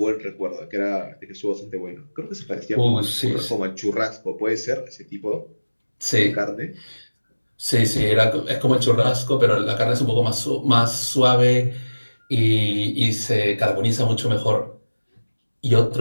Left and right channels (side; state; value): both; inverted; correlation -1.00